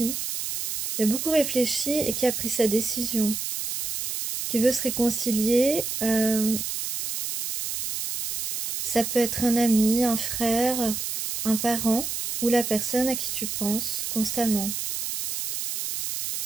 et qui a pris sa décision, qui veut se réconcilier. Ça peut être un ami, un frère, un parent ou la personne à qui tu penses constamment.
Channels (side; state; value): right; noise; hiss, 4 dB below the sound